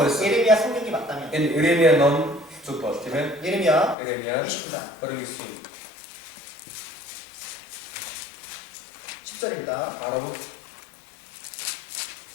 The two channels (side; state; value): right; drops out; at 4.0 s